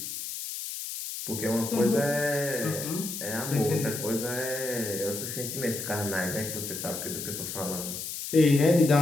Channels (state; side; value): noise; left; hiss, 6 dB below the sound